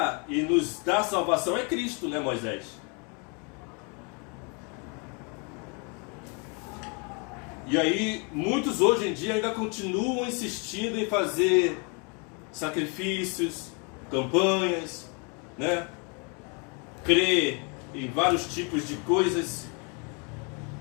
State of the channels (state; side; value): quieter; right; 34.3 dB